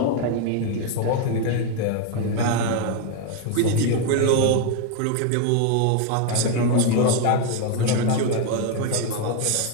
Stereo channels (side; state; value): both; different; correlation 0.01